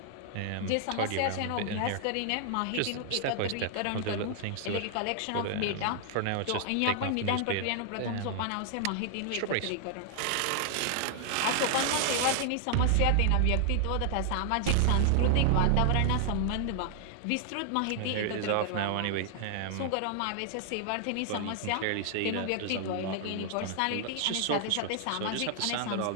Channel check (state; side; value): different; both; correlation 0.00